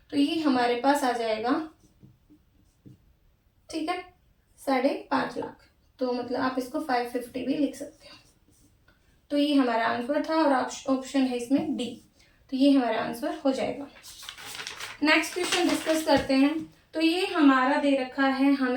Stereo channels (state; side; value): identical; both; correlation 1.00